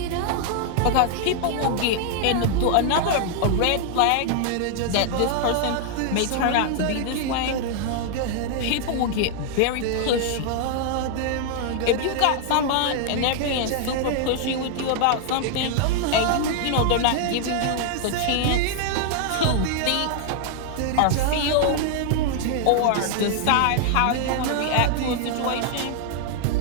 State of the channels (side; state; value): both; different; correlation 0.00